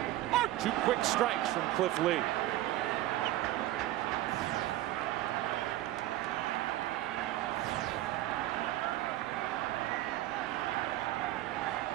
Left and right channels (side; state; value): left; quieter; 15.2 dB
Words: Two quick strikes from Cliff Lee.